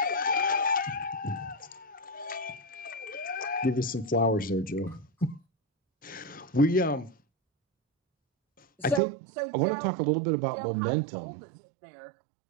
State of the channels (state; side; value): drops out; left; at 9.0 s